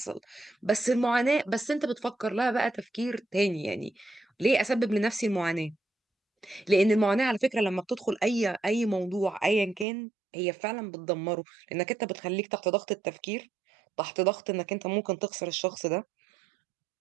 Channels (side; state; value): left; drops out; at 9.9 s